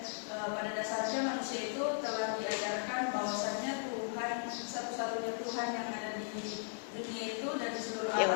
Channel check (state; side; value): silent; right; digital silence